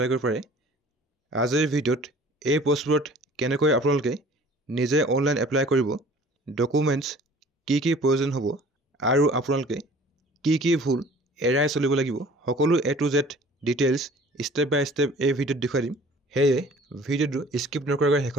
কৰিব পাৰে। আজিৰ ভিডিঅ'ত এই পোষ্টবোৰত কেনেকৈ আপোনালোকে নিজে অনলাইন এপ্লাই কৰিব, ডকুমেণ্টছ কি প্ৰয়োজন হ'ব আৰু আপোনালোকে কি ভুল এৰাই চলিব লাগিব, সকলো A to Z details step by step এই ভিডিঅ'ত দেখুৱাই দিম। সেয়ে ভিডিঅ'টো স্কিপ নকৰাকৈ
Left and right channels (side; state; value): both; normal; correlation 0.49